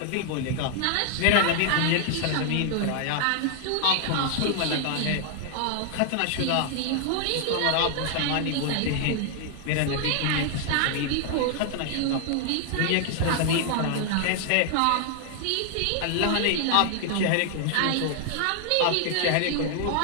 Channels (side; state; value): both; different; correlation 0.00